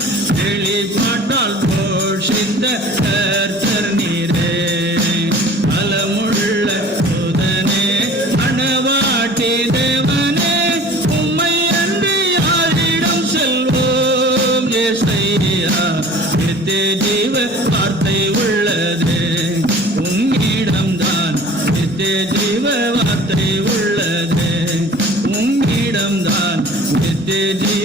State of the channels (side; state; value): both; normal; correlation 0.46